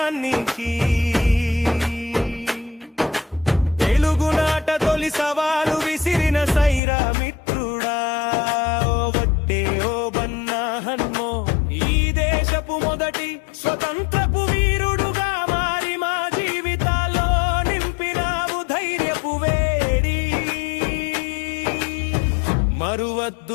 తెలుగునాట తొలి సవాలు విసిరిన సైరా మిత్రుడా, ఓ వట్టే ఓ బన్నా హన్మో, ఈ దేశపు మొదటి స్వతంత్రపు వీరుడుగా మారి మా జీవితాల్లో నింపినావు ధైర్యపు వేడి.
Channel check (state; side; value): drops out; right; at 6.8 s